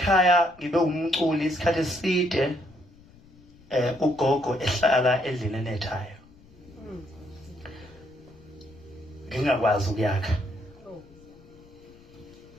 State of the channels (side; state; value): left; noise; rumble, 25 dB below the sound